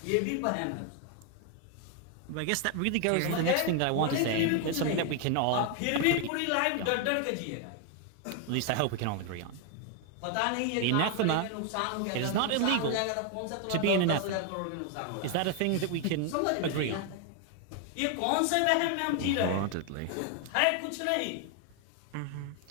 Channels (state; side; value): different; both; correlation 0.01